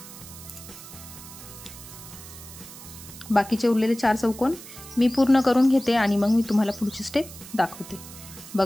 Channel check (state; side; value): noise; right; hiss, 15 dB below the sound